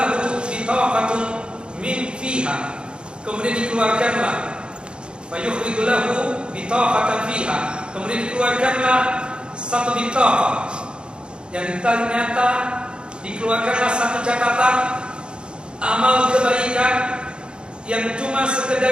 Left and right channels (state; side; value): late; left; 0.053 ms